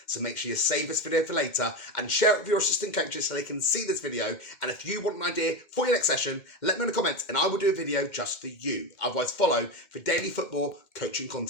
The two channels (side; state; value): right; late; 2.1 ms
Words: So make sure you save this video for later and share it with your assistant coaches so they can see this video. And if you want an idea for your next session, let me know in the comments and I will do a video just for you. Otherwise, follow for daily football coaching